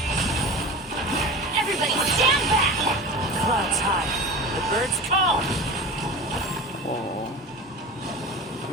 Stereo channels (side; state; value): both; normal; correlation 0.32